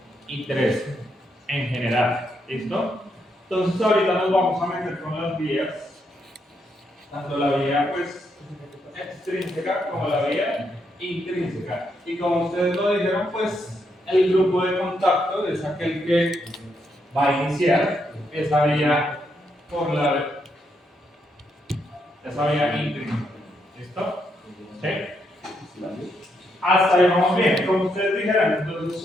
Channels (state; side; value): normal; both; correlation 0.78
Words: y 3 en general. ¿Listo? Entonces ahorita nos vamos a meter con las vías, tanto la vía pues, extrínseca como la vía intrínseca. Y como ustedes lo dijeron, pues el grupo de contacto es aquel que va a iniciar esa vía por esa vía intrínseca. ¿Listo? ¿Sí? Hasta ahí vamos bien. Como ustedes dijeron, entonces